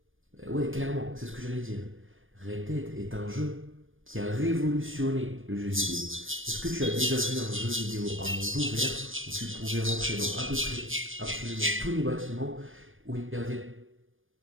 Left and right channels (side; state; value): left; late; 0.59 ms